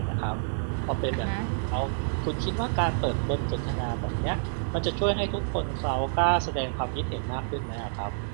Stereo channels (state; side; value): silent; left; digital silence